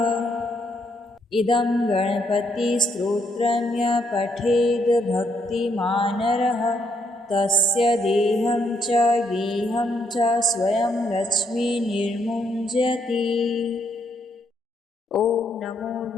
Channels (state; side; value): normal; both; correlation 0.74